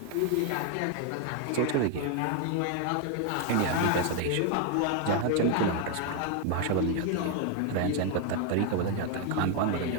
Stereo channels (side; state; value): both; different; correlation 0.01